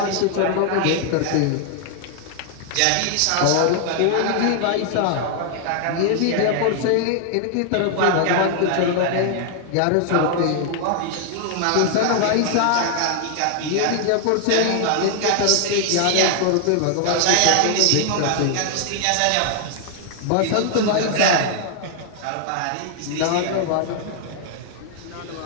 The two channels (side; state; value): both; different; correlation 0.00